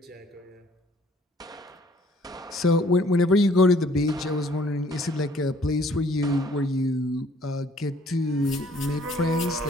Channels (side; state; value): both; normal; correlation 0.59